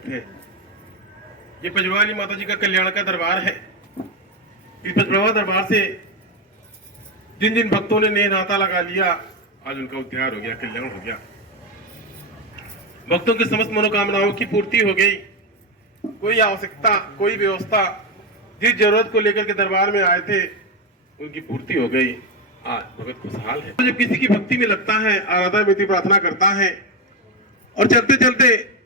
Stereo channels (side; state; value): both; normal; correlation 0.11